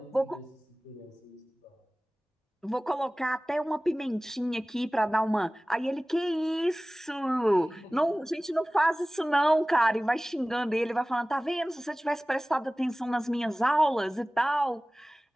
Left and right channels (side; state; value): both; normal; correlation 0.98